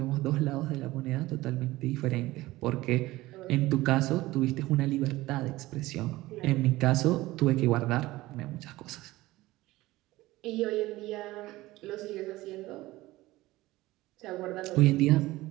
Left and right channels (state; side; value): quieter; left; 18.2 dB